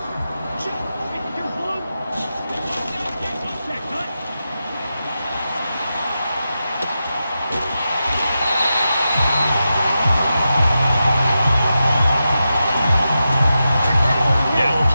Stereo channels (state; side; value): inverted; both; correlation -0.90